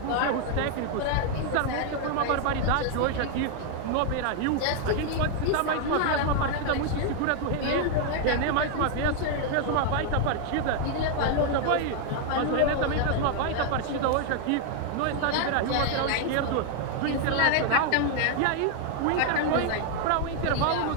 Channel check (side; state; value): both; different; correlation 0.00